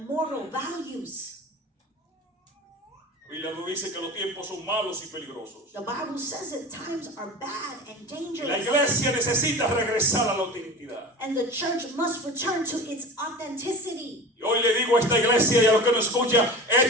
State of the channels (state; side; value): normal; both; correlation 0.33